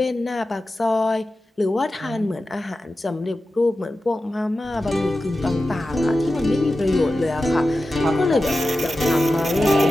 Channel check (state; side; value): normal; both; correlation 0.93